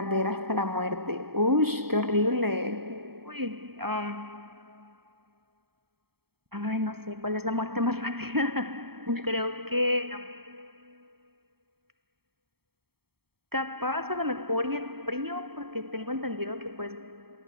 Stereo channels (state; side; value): late; left; 0.96 ms